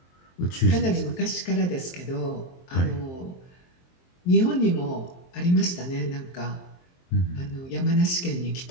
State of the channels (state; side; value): late; right; 23 ms